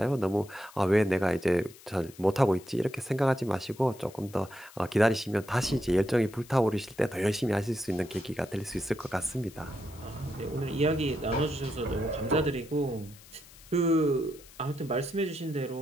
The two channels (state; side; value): noise; left; hiss, 21 dB below the sound